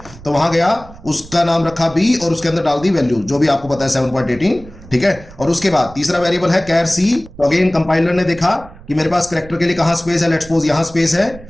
तो वहां गया, उसका नाम रखा बी और उसके अंदर डाल दी वैल्यू जो भी आपको पता है 7.18। ठीक है, और उसके बाद तीसरा वेरिएबल है कैर सी। तो अगेन कंपाइलर ने देखा कि मेरे पास कैरेक्टर के लिए कहां स्पेस है, लेट्स सपोज यहां स्पेस है,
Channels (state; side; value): noise; right; rumble, 19 dB below the sound